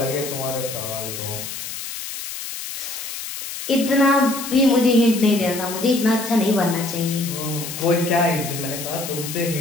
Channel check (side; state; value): left; noise; hiss, 8 dB below the sound